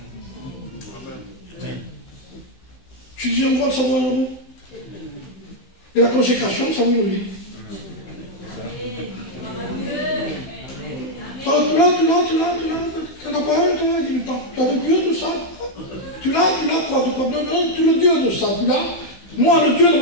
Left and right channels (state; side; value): late; right; 15 ms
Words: Je dis un voile, ça vaut 1 euro. Et la consécration, ça nous dit. Tu n'as pas un, tu as le Dieu de ça. Tu l'as quoi? Tu le Dieu de ça, tu l'as. Moi, le Dieu de